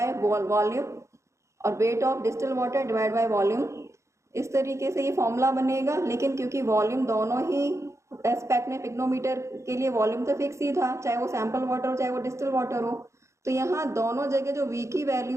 volume और weight of distill water divide by volume, इस तरीके से ये फॉर्मूला बनेगा। लेकिन क्योंकि वॉल्यूम दोनों ही एस्पेक्ट में पिक्नोमीटर के लिए वॉल्यूम तो फिक्स ही था, चाहे वो सैम्पल वाटर हो चाहे वो डिस्टिल वाटर हो, तो यहाँ दोनों जगह जो V की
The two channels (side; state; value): left; late; 0.14 ms